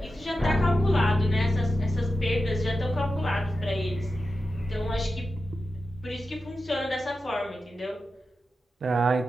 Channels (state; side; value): normal; both; correlation 0.90